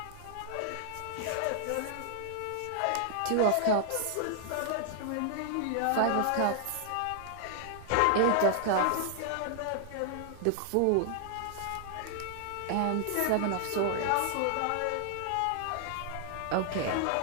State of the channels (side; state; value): both; different; correlation 0.00